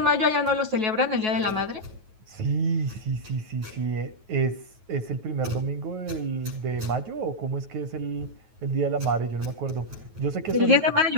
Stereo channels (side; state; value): left; late; 9.3 ms